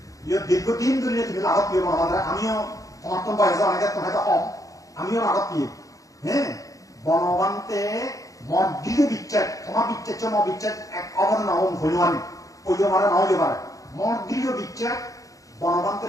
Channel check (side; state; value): right; late; 0.16 ms